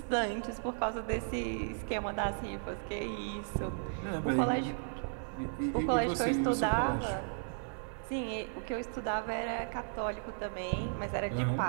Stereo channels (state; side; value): silent; left; digital silence